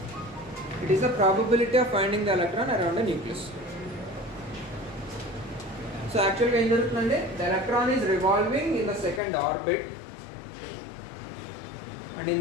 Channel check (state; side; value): drops out; right; at 9.2 s